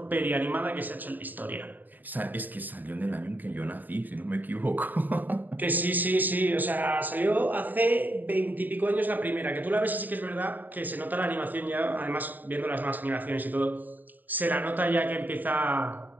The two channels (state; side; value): late; left; 0.086 ms